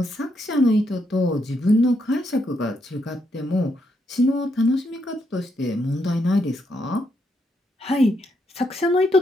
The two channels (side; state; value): both; normal; correlation 0.78